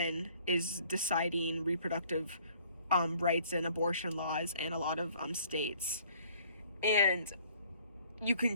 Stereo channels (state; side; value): inverted; both; correlation -0.58